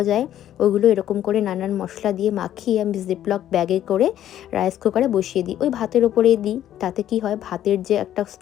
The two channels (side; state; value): right; quieter; 11.6 dB